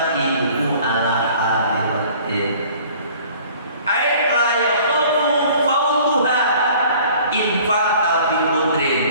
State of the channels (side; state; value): both; inverted; correlation -0.51